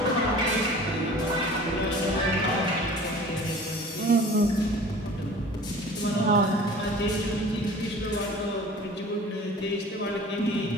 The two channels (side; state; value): both; normal; correlation 0.43